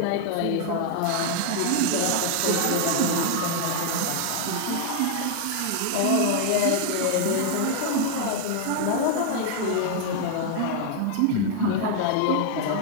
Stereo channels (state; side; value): different; both; correlation 0.00